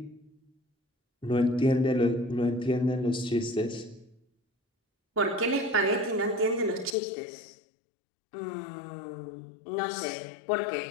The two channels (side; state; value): right; drops out; at 7.0 s